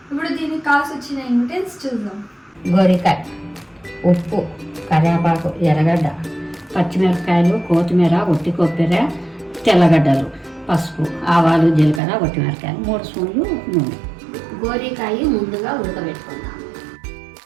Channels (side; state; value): left; drops out; at 12.0 s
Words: ఇప్పుడు దీనికి కావాల్సి వచ్చిన ఇంగ్రీడియంట్స్ చూద్దాం. గోరికాయ, ఉప్పు, కరివేపాకు, ఎర్రగడ్డ, పచ్చిమిరపకాయలు, కొత్తిమీర, ఒట్టి కొబ్బరి, తెల్లగడ్డలు, పసుపు, ఆవాలు, జీలకర్ర, ఒట్టిమిరపకాయలు, 3 స్పూన్లు నూనె. గోరికాయ ముందుగా ఉడకబెట్టుకుందాం.